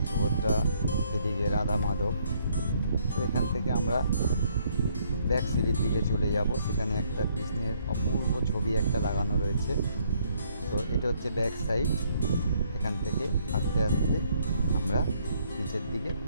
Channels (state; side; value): inverted; both; correlation -0.68